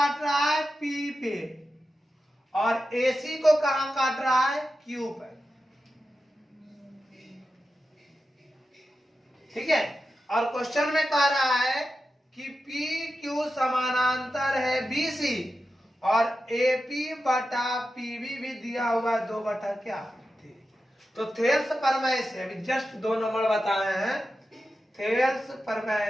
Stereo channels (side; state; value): both; normal; correlation 0.91